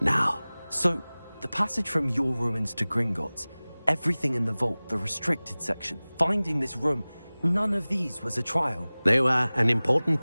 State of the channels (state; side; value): inverted; both; correlation -0.99